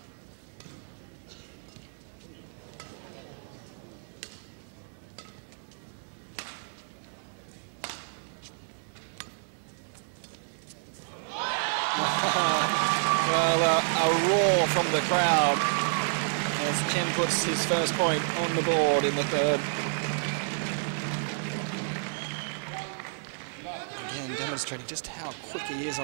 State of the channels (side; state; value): left; silent; 58 dB below the other